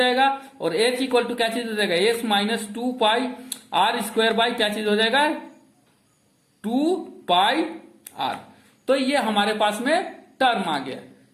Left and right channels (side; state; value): both; identical; correlation 1.00